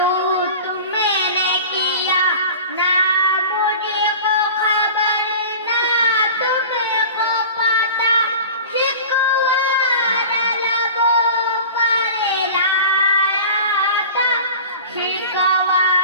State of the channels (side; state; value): both; inverted; correlation -0.38